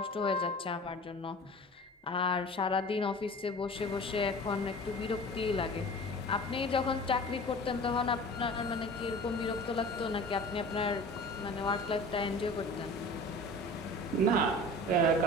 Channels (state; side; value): normal; both; correlation 0.40